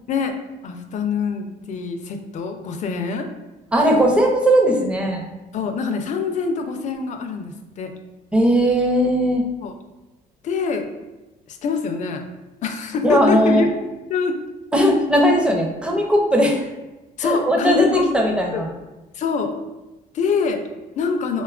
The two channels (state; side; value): normal; both; correlation 0.60